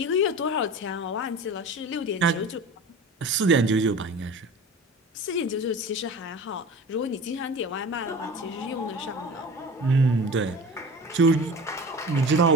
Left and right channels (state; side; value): normal; both; correlation 0.37